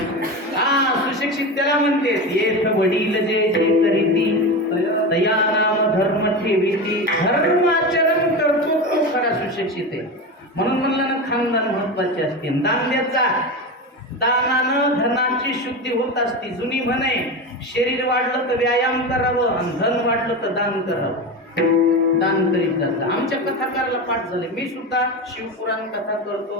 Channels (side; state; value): both; normal; correlation 0.22